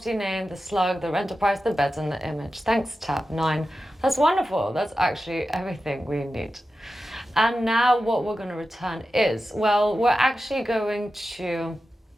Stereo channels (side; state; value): both; normal; correlation 0.92